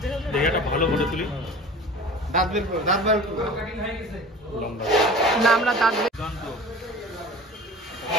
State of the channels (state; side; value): normal; both; correlation 0.39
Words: বের হবে দেখাটা ভালো করে তুলি দাঁত বার করো না আমরা দাঁত বের